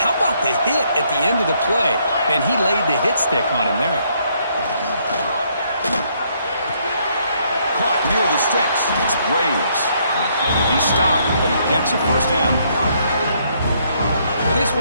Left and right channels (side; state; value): both; inverted; correlation -0.70